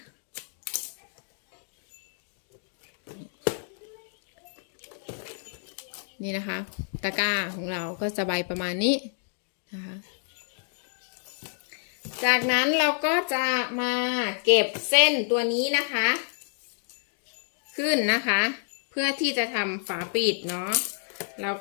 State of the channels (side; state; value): right; silent; digital silence